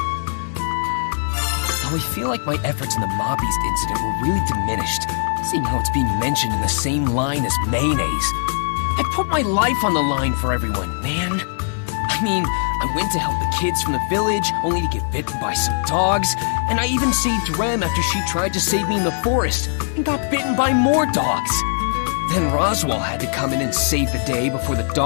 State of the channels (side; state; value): right; silent; 65 dB below the other